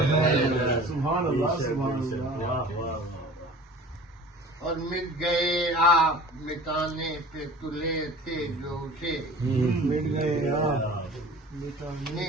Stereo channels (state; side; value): normal; both; correlation 0.43